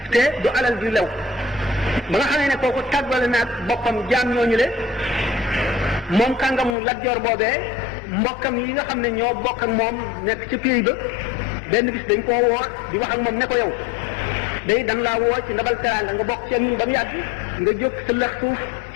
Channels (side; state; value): right; drops out; at 6.8 s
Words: te du alal ju lew ba nga xamee ne kooku tàggale naag boppam jaam ñooñu le moom kàngamu Lat Joor boobee mbokkam yi nga xam ne ñoo bokk ak moom nekk ca pays ba benn bis dañ koo woo di wax ak moom ne ko yow day dan laa woo ci ndabal teraanga nga bokk ci ñun ba mu yàgg nga jóg sa lëx suuf